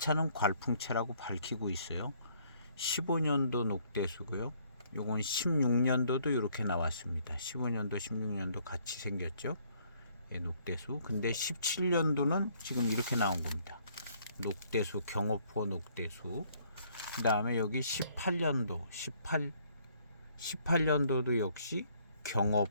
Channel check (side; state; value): both; inverted; correlation -0.64